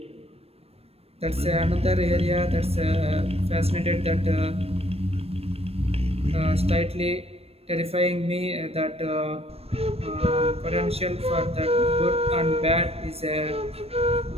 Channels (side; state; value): left; late; 0.29 ms